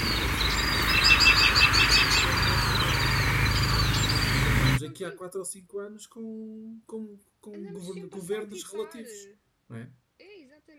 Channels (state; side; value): identical; both; correlation 1.00